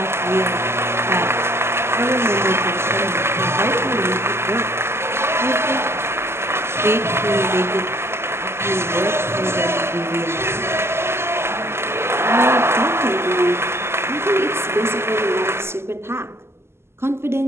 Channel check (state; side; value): late; left; 0.12 ms